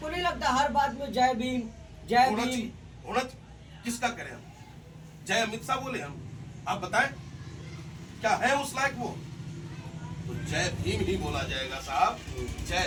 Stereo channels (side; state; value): both; identical; correlation 1.00